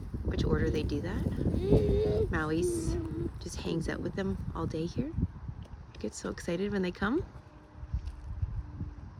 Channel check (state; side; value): identical; both; correlation 1.00